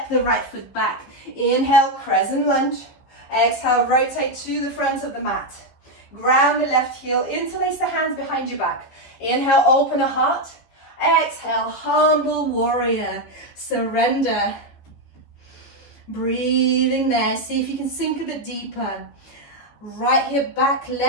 the right foot back. Inhale, crescent lunge. Exhale, rotate to the front of the mat. Ground the left heel, interlace the hands behind your back. Inhale, open a heart. Exhale, humble warrior, surrender. Breathing there, see if you can sink a bit deeper. Right hip back,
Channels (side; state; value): right; late; 15 ms